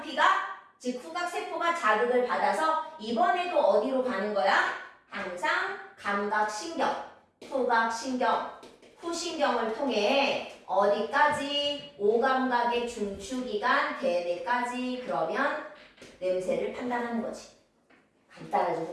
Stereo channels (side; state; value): both; identical; correlation 1.00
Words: 즉 후각 세포가 자극을 받아서 이번에도 어디로 가는 거야? 항상 감각신경, 후각신경, 후신경을 통해 어디까지? 오감각의 중추기관, 대뇌까지. 그러면 냄새를 판단하는 거지. 간단하죠,